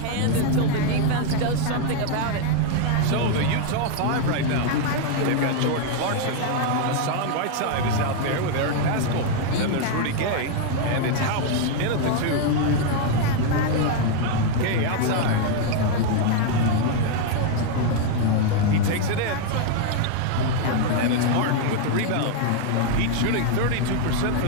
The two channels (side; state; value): both; different; correlation 0.00